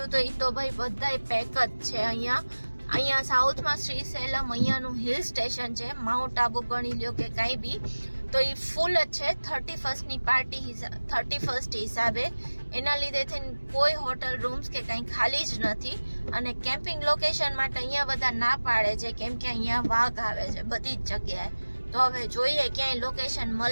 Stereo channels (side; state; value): both; inverted; correlation -1.00